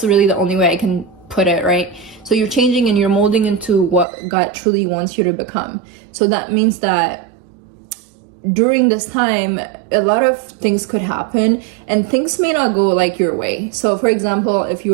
really the only way I can put it, right? So you're changing and you're molding into what God truly wants you to become. So that means that during this time, a lot of things could happen and things may not go like your way. So for example, if you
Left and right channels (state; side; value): drops out; left; at 4.0 s